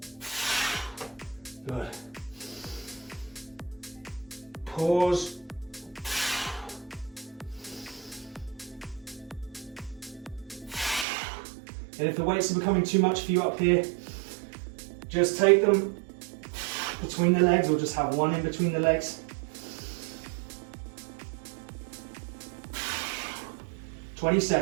Good. Pause. And if the weights are becoming too much for you up here, just take them between the legs, or just have one in between the legs. 20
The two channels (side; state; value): left; drops out; at 11.1 s